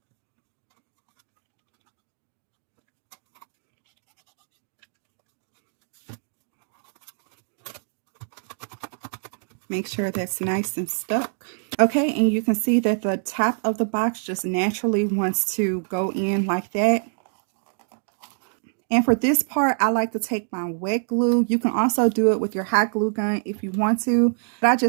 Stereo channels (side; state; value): left; silent; digital silence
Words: Make sure that's nice and stuck. Okay, and you can see that the top of the box just naturally wants to go in like that. And for this part, I like to take my wet glue. You can also do it with your hot glue gun if you want to. But I